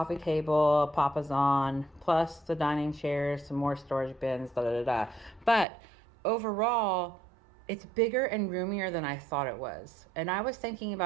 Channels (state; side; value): drops out; left; at 5.7 s